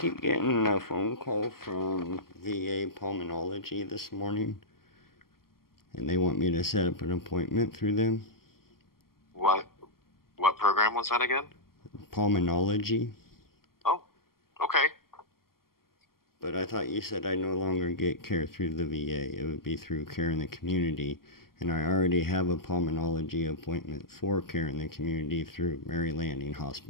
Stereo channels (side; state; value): right; late; 0.92 ms